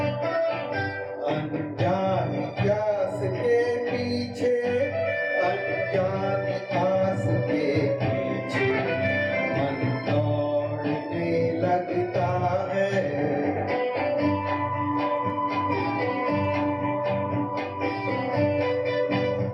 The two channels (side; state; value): both; identical; correlation 1.00